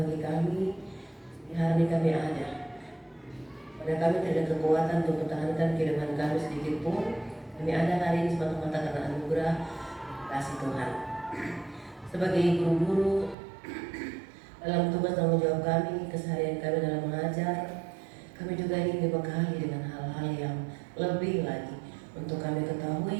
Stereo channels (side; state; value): left; drops out; at 13.4 s